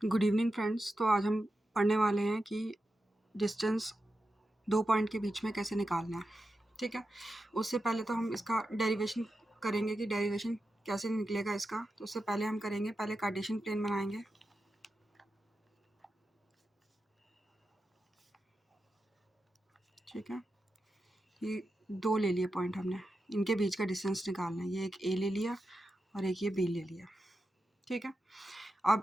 Good evening friends. तो आज हम पढ़ने वाले हैं कि डिस्टेंस 2 पॉइंट के बीच में कैसे निकालना है। ठीक है, उससे पहले तो हम इसका डेरिवेशन करेंगे कि डेरिवेशन कैसे निकलेगा इसका। तो उससे पहले हम करेंगे, पहले कार्टेशियन प्लेन बनाएंगे। ठीक है, ये 2 ले लिए पॉइंट हमने, इनके बीच का डिस्टेंस निकालना है। ये एक ए ले लिया और एक ये बी ले लिया। ठीक है,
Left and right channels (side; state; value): both; normal; correlation 0.90